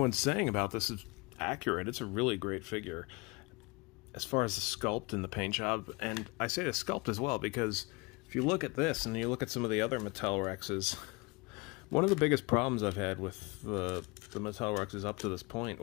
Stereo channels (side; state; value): right; quieter; 26.1 dB